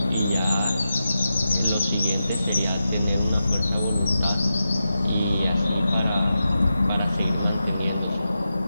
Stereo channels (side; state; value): both; inverted; correlation -0.90